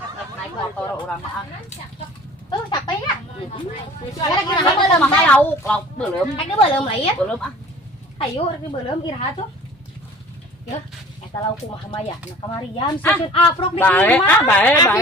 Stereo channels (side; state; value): both; normal; correlation 0.46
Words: naik motor urang mah. Tuh capek ya? Kira-kira mah mah lauk belum. Ada belum lain? Belum ah. Ayo rek belum iraha tuh. Ya, eta lauk kumaha mah ya? Nah kamarian susun aprok di imah.